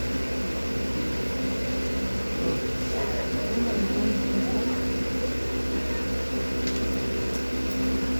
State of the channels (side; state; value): both; inverted; correlation -1.00